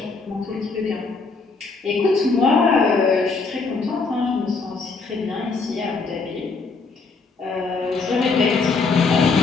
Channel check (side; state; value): right; quieter; 4.3 dB